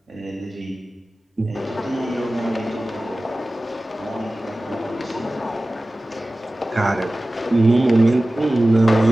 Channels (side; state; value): both; normal; correlation 0.97